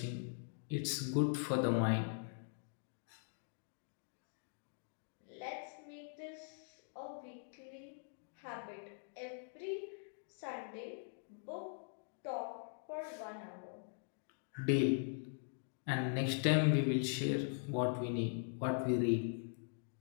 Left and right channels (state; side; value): silent; right; digital silence